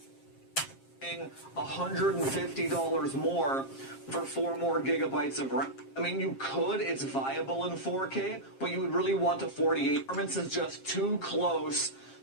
$150 more for 4 more gigabytes of RAM. I mean, you could, it's viable in 4K, but you would really want a 48. Performance is just too close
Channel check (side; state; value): right; late; 7.5 ms